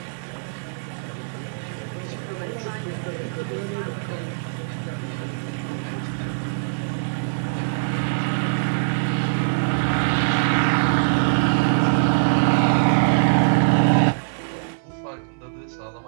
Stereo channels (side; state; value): left; silent; 61 dB below the other